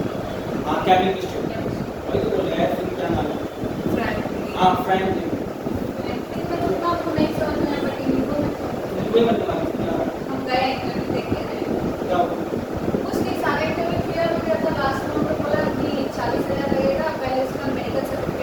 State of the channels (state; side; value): identical; both; correlation 1.00